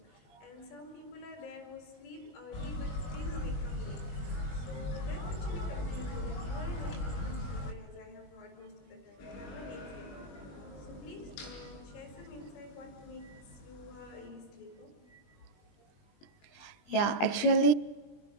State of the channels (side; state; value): right; late; 20 ms